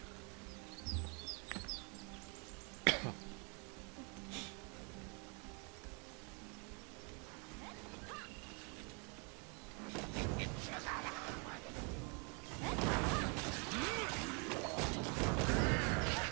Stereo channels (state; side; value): quieter; left; 35.0 dB